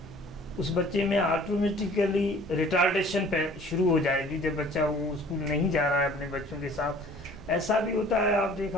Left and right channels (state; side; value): normal; both; correlation 0.51